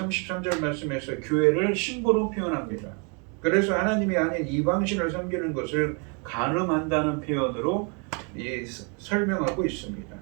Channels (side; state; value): left; quieter; 34.7 dB